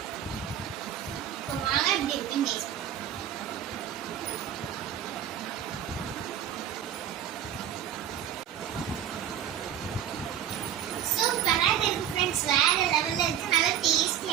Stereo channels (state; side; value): quieter; left; 10.1 dB